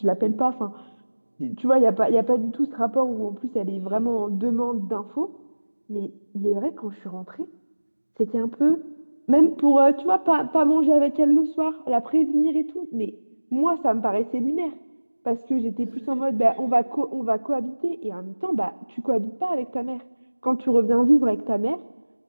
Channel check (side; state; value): both; inverted; correlation -1.00